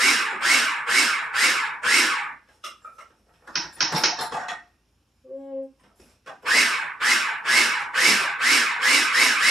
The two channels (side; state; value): both; normal; correlation 0.78